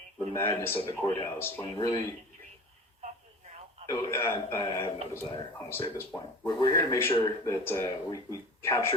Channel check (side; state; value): both; normal; correlation 0.38